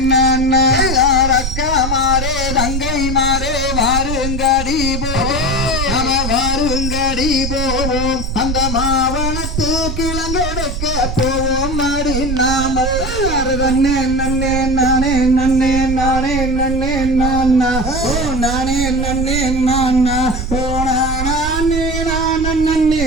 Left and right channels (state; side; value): noise; right; rumble, 4 dB below the sound